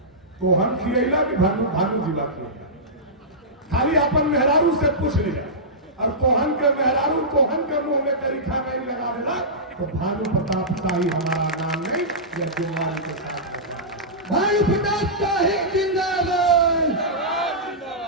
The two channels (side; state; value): both; normal; correlation -0.15